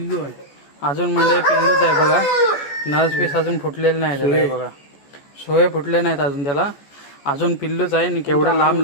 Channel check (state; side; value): late; right; 14 ms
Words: आहे. अजून मंडळी पिल्लूच आहे बघा. नस पीस अजून फुटलेलं नाही त्याला. हे बघा, सोय फुटले नाहीत अजून त्याला. अजून पिल्लूच आहे. आणि केवढा